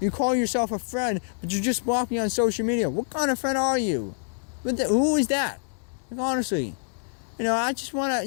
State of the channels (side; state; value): right; silent; digital silence